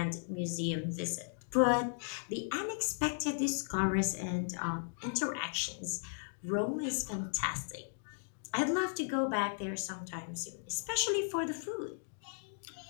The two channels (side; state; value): right; silent; digital silence